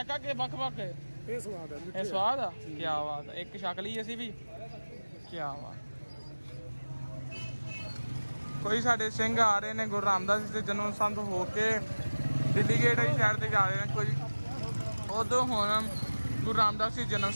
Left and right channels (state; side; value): inverted; both; correlation -1.00